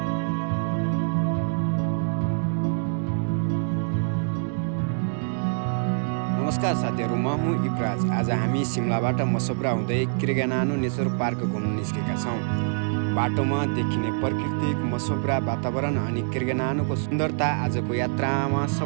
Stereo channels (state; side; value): silent; left; digital silence